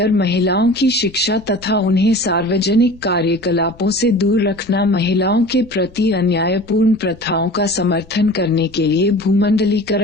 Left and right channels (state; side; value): noise; left; rumble, 24 dB below the sound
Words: महिलाओं की शिक्षा तथा उन्हें सार्वजनिक कार्यकलापों से दूर रखना, महिलाओं के प्रति अन्यायपूर्ण प्रथाओं का समर्थन करने के लिए